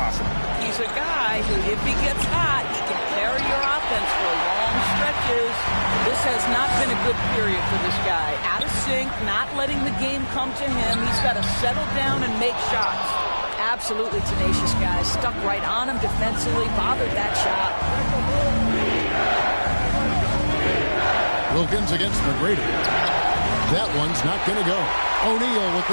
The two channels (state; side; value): inverted; both; correlation -1.00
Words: He's a guy who, if he gets hot, he can carry your offense for long stretches. This has not been a good period for this guy. Out of sync, not letting the game come to him. He's got to settle down and make shots. Absolutely tenacious guy. Stuck right on him defensively, bothered that shot. Wilkins against McGrady. That one's not going to go. O'Neal with